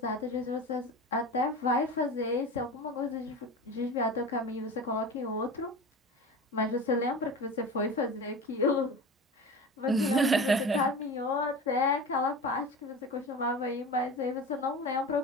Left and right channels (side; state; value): both; normal; correlation 0.31